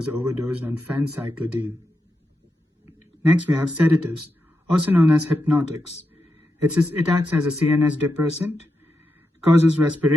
overdosed on phencyclidine. Next, we have sedatives, also known as hypnotics. It acts as a CNS depressant, causes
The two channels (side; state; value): both; normal; correlation 0.87